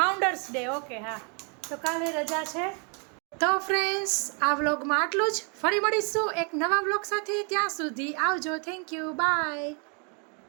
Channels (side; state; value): left; quieter; 36.7 dB